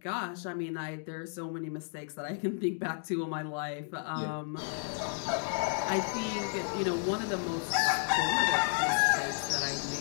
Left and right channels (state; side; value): silent; right; digital silence